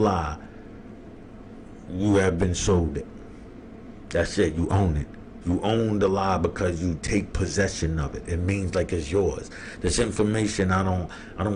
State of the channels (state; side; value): identical; both; correlation 1.00